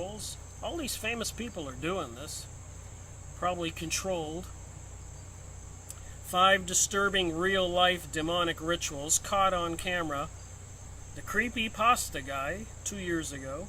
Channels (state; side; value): identical; both; correlation 1.00